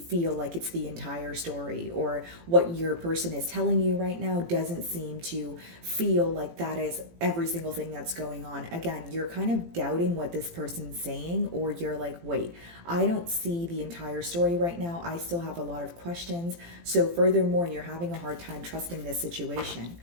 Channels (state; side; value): late; left; 18 ms